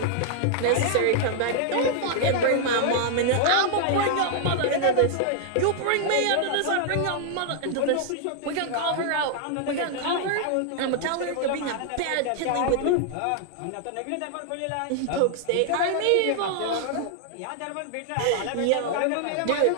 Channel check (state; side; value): different; both; correlation -0.01